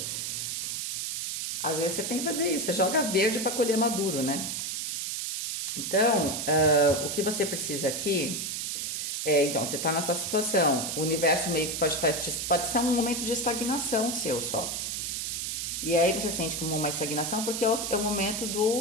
Às vezes você tem que fazer isso, você joga verde para colher maduro, né? Então, o que você precisa aqui então, você está nessa situação, o universo meio que pode ser um momento de estagnação seu só. E aí você sente como uma estagnação porque é o momento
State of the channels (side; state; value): right; noise; hiss, 3 dB below the sound